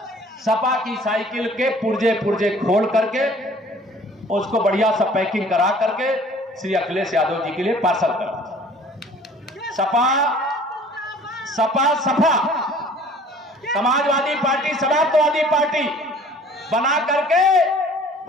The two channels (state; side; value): normal; both; correlation 0.51